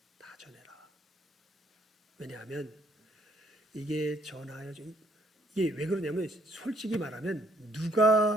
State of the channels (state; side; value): normal; both; correlation 0.67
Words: 다 전해라. 왜냐하면 이게 전하여 이게 왜 그러냐면 솔직히 말하면